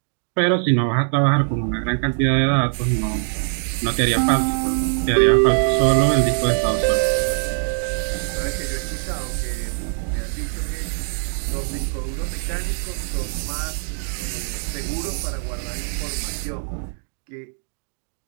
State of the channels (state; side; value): silent; left; digital silence